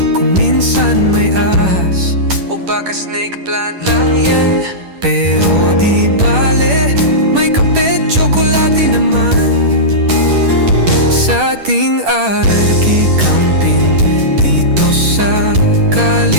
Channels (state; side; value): late; left; 10 ms